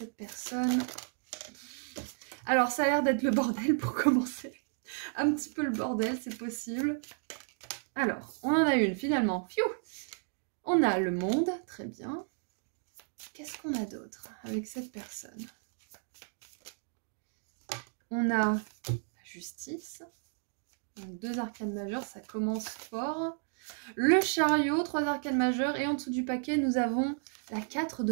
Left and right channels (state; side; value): silent; left; 56 dB below the other